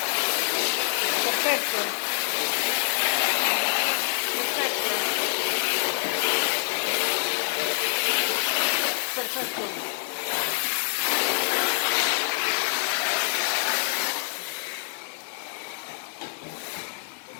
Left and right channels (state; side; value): silent; right; digital silence